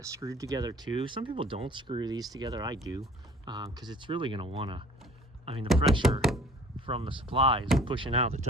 screwed together too. Some people don't screw these together. I do, because it's really going to want to, I mean, the pressure from the supply is pushing out the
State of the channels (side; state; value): both; normal; correlation 0.49